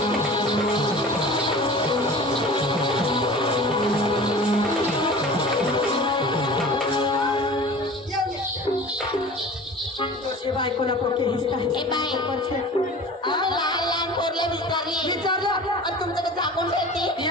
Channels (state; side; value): normal; both; correlation 0.39